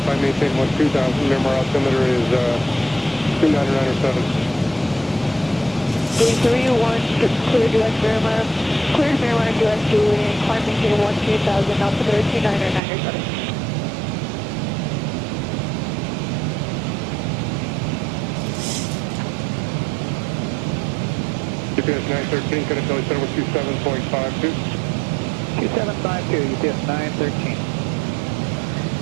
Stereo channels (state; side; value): drops out; left; at 12.8 s